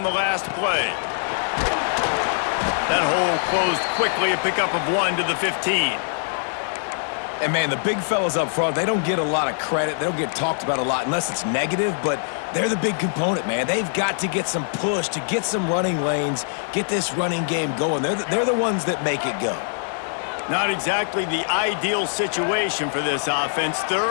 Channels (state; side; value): silent; right; 60 dB below the other